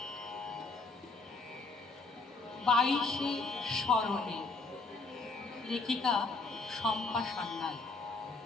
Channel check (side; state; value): right; quieter; 3.7 dB